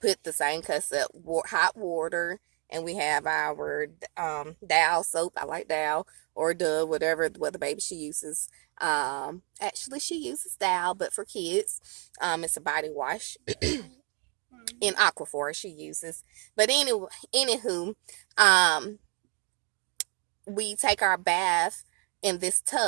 put the same cup of hot water, and we have our Dow soap. I like Dow or Dove, whatever what the baby she uses. Actually she uses Dow, but for kids, it's a body wash. In Aquaphor she uses. But anyway, anywho, we take our bath in this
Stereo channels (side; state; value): left; quieter; 33.4 dB